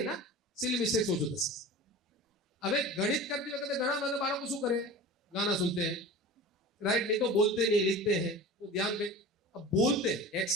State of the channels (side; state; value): both; normal; correlation 0.35